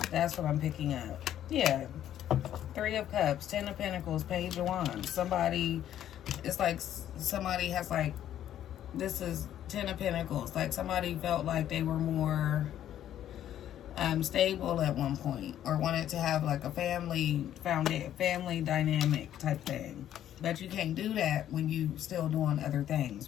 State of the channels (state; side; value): quieter; right; 11.3 dB